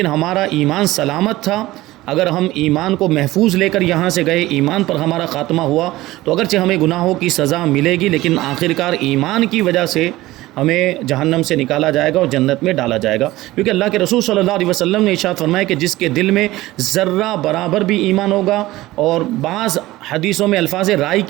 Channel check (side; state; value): left; quieter; 17.6 dB